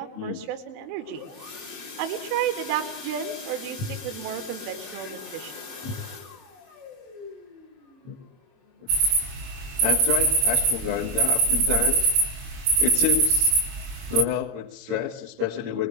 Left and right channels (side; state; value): left; late; 22 ms